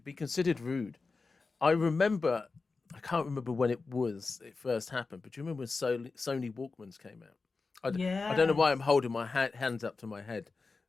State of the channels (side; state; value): right; quieter; 4.1 dB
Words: be considered rude. I remember, I can't remember when it first happened, but do you remember when Sony Walkmans came out? I don't know why I'm Yes. holding my hands up to my head,